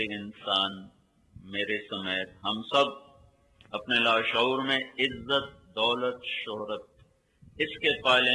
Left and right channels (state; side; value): identical; both; correlation 1.00